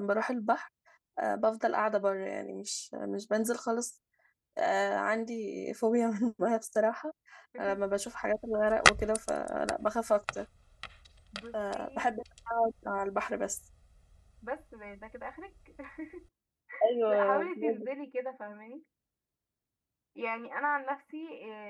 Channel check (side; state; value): both; identical; correlation 1.00